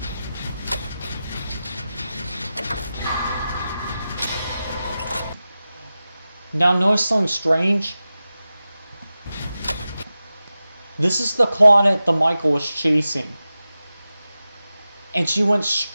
Now notice something strange. This is the Claudette the Michael was chasing. And she went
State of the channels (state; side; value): inverted; both; correlation -0.94